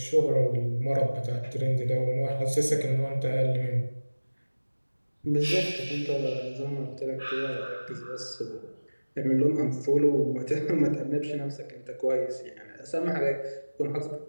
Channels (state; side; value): inverted; both; correlation -1.00